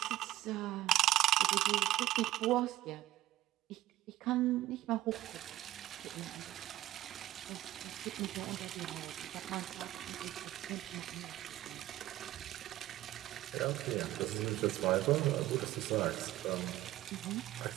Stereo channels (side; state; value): left; quieter; 15.1 dB